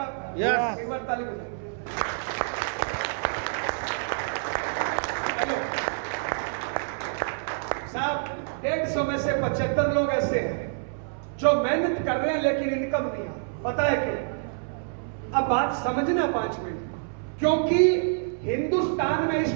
यस। एक बार ताली बजाओ। साहब 150 में से 75 लोग ऐसे हैं जो मेहनत कर रहे हैं लेकिन इनकम नहीं आ। पता है क्यों? अब बात समझना 5 मिनट। क्योंकि हिंदुस्तान में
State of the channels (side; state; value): left; silent; 60 dB below the other